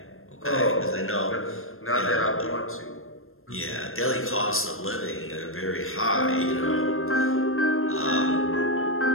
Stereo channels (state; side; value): late; right; 0.61 ms